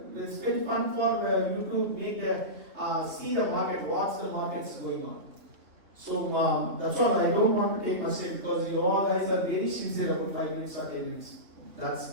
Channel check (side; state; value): left; late; 3.1 ms